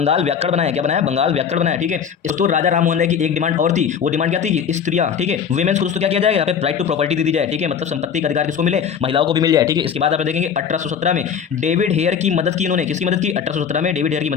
व्याकरण बनाया। क्या बनाया, बंगाल व्याकरण बनाया, ठीक है। दोस्तों राजा राम मोहन राय की एक डिमांड और थी, वो डिमांड क्या थी कि स्त्रियां, ठीक है, वुमेन्स को दोस्तों क्या किया जाएगा, यहाँ पे राइट टू प्रॉपर्टी दे दी जाए, ठीक है। मतलब संपत्ति का अधिकार किसको मिले, महिलाओं को भी मिल जाए, ठीक है। इसके बाद आप देखेंगे 1817 में डेविड हेयर की मदद की इन्होंने, किसकी मदद की, 1817 में डेविड हेयर की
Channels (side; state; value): right; quieter; 7.3 dB